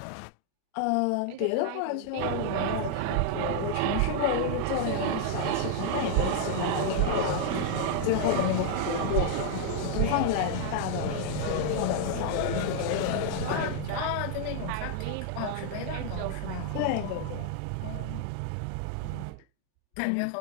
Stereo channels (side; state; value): both; different; correlation -0.01